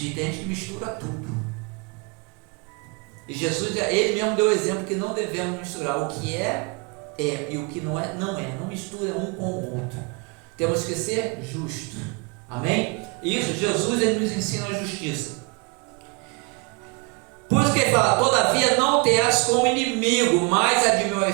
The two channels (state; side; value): quieter; left; 32.1 dB